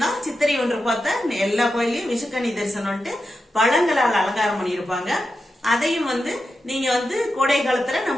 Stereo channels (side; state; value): both; normal; correlation 0.89